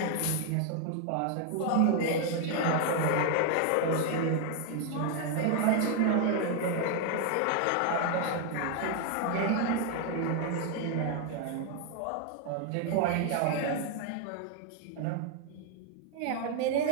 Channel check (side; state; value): both; different; correlation 0.01